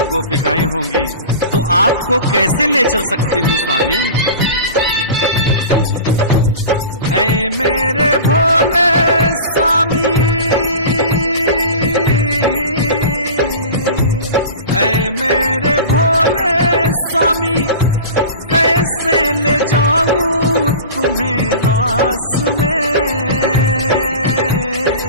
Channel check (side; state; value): both; inverted; correlation -0.35